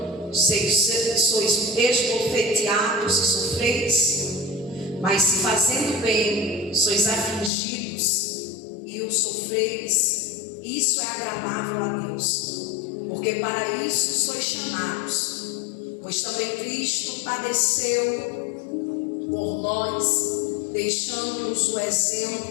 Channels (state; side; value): drops out; right; at 7.5 s